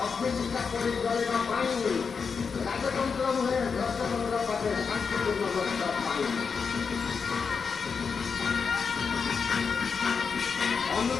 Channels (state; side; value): quieter; right; 5.6 dB